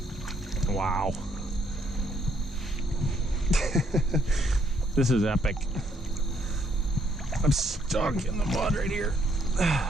Wow. This is epic. I'm stuck in the mud right here.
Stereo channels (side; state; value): both; normal; correlation 0.70